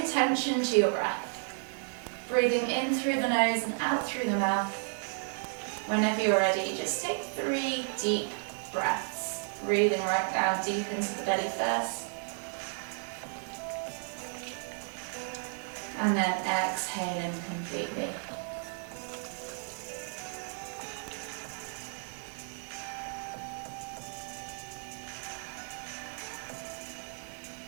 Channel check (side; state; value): left; silent; 56 dB below the other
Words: to your breath. Breathing in through the nose and out through the mouth. Whenever you're ready, just take 3 deep breaths. Breathing right down deep into the belly first. And then exhaling completely.